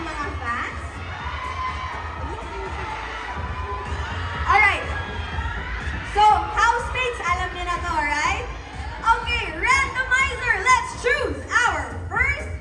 mga fans? Alright. So, housemates, alam niyo na to, alright? Okay, randomizer, let's choose our first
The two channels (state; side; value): identical; both; correlation 1.00